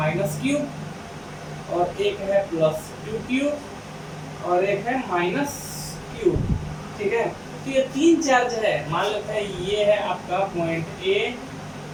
क्यू और एक है प्लस क्यू और एक है माइनस क्यू। ठीक है, तो ये 3 चार्ज है, मान लेते हैं ये है आपका पॉइंट ए,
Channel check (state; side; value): identical; both; correlation 1.00